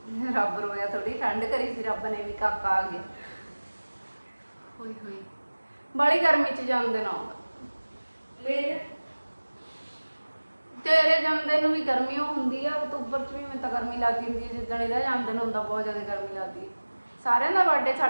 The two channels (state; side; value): inverted; both; correlation -1.00